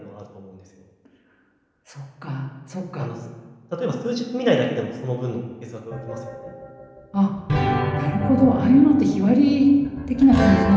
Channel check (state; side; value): identical; both; correlation 1.00